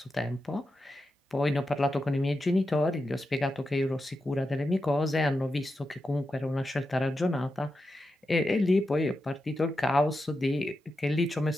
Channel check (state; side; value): normal; both; correlation 0.89